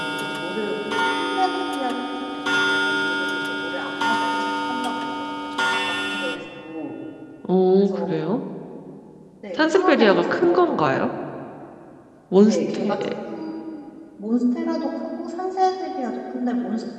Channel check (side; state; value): both; identical; correlation 1.00